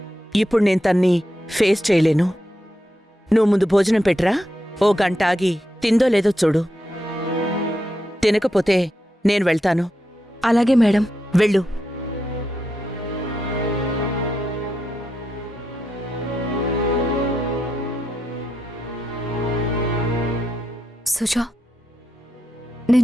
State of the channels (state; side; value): normal; both; correlation 0.84